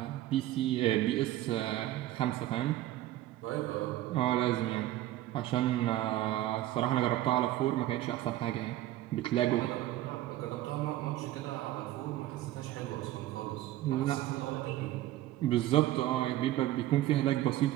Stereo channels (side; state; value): left; quieter; 14.7 dB